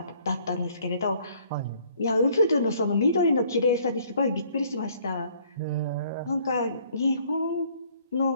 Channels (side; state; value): both; inverted; correlation -0.61